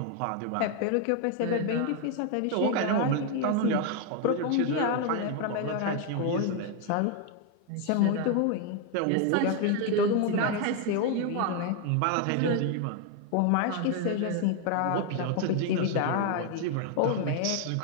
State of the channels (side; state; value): both; different; correlation 0.01